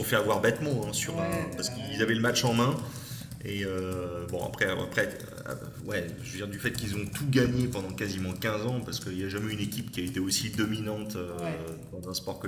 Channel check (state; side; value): identical; both; correlation 1.00